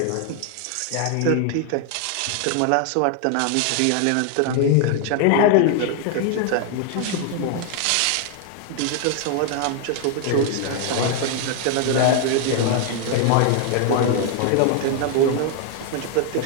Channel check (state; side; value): different; both; correlation 0.00